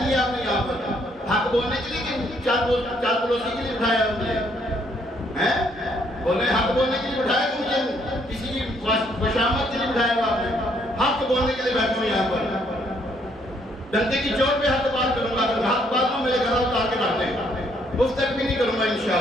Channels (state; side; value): normal; both; correlation 0.69